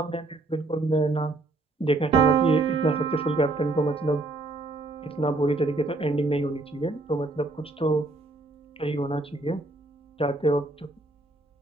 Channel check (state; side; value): quieter; left; 3.1 dB